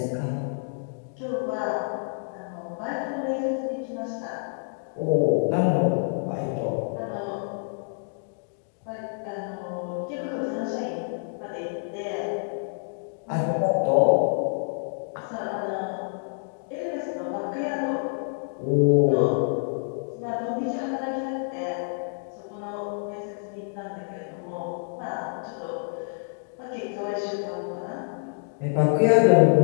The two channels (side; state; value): right; silent; digital silence